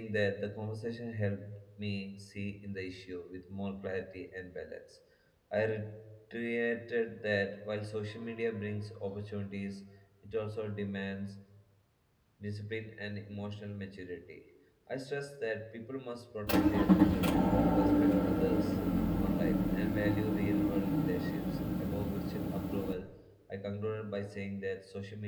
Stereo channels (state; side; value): identical; both; correlation 1.00